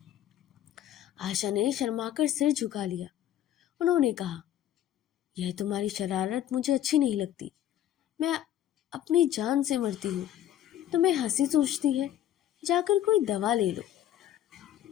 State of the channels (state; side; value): quieter; right; 11.7 dB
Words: आशा ने शर्माकर सिर झुका लिया। उन्होंने कहा, यह तुम्हारी शरारत मुझे अच्छी नहीं लगती। मैं अपनी जान से मरती हूँ, तुम्हें हंसी सूझती है? जाकर कोई दवा ले लो।